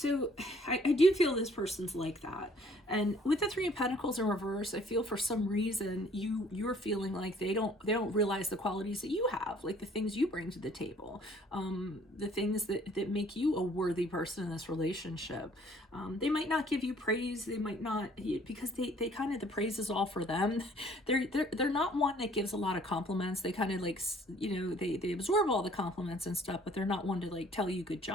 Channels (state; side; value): normal; both; correlation 0.58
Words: I do feel this person's like that, and with the Three of Pentacles in reverse, I feel for some reason you're feeling like they don't realize the qualities that you have, like the things you bring to the table, the things that make you a worthy person in this relationship. They might not give you praise, they might not, because they kind of, the praise is all for them. They're not one that gives a lot of compliments. They kind of like, they absorb all the compliments and stuff, but they're not one to like tell you good